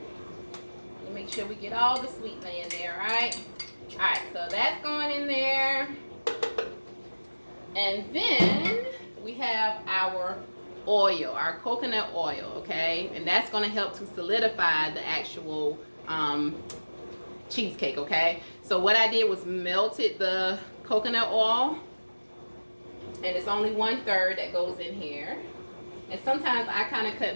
Make sure we get all the sweetener in there, right? All right, so that's going in there. And then we have our oil, our coconut oil, okay? And that's going to help to solidify the actual cheesecake, okay? So what I did was melted the coconut oil, and it's only 1/3 that goes in here. And sometimes I kind of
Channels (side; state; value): both; inverted; correlation -1.00